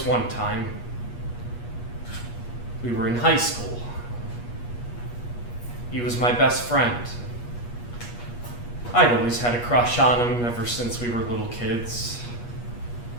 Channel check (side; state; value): right; late; 8.4 ms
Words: one time. We were in high school. He was my best friend. I'd always had a crush on him ever since we were little kids.